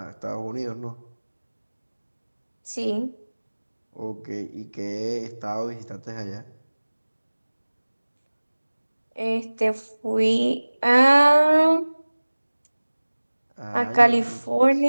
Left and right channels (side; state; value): both; inverted; correlation -1.00